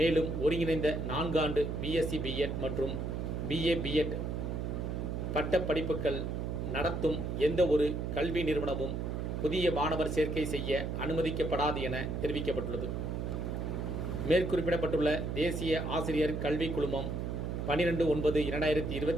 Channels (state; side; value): noise; right; hum, 2 dB below the sound